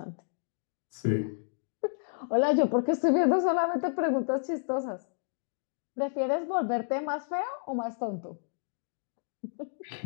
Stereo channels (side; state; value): right; silent; digital silence